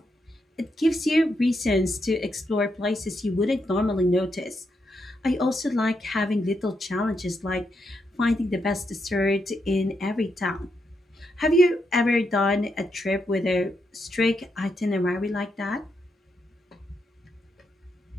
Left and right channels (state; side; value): normal; both; correlation 0.81